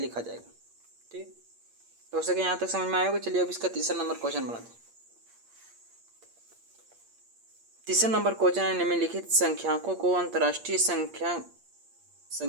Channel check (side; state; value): left; late; 8.6 ms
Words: जाएगा। ठीक, तो हो सके यहाँ तक समझ में आएगा। चलिए अब इसका तीसरा नंबर क्वेश्चन बनाते हैं। तीसरा नंबर क्वेश्चन है, निम्नलिखित संख्याकों को अंतर्राष्ट्रीय